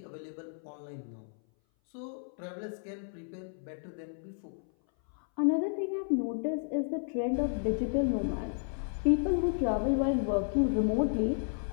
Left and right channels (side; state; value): right; silent; 56 dB below the other